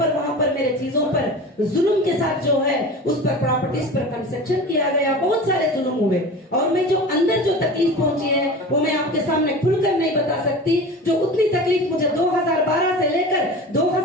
वहां पर मेरे चीजों पर जुल्म के साथ जो है उस पर प्रॉपर्टीज पर कंस्ट्रक्शन किया गया, बहुत सारे जुल्म हुए। और मैं जो अंदर जो तकलीफ पहुंची है वो मैं आपके सामने खुलकर नहीं बता सकती। जो उतनी तकलीफ मुझे 2012 से लेकर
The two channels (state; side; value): normal; both; correlation 0.34